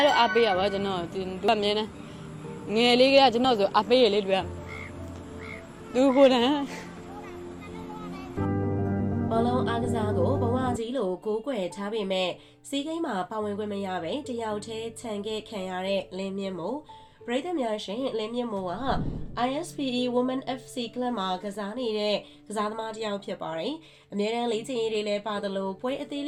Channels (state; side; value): identical; both; correlation 1.00